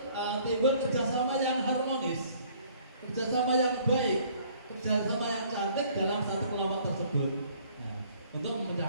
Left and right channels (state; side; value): inverted; both; correlation -0.58